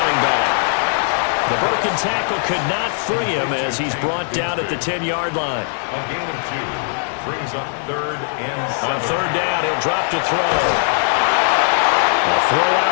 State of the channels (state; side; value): silent; right; digital silence